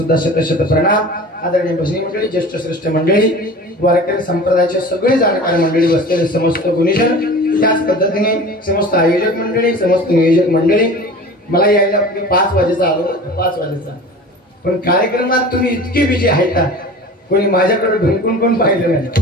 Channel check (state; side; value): normal; both; correlation 0.38